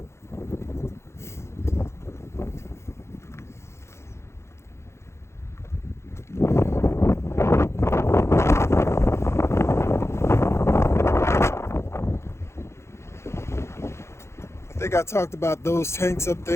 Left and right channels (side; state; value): right; late; 0.13 ms